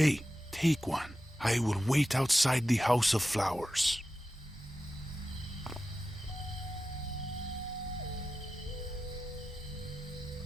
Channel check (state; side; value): normal; both; correlation 0.92